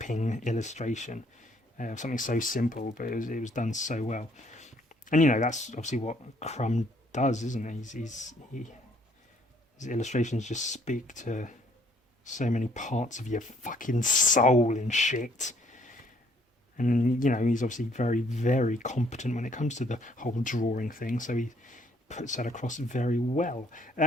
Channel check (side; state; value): both; normal; correlation 0.64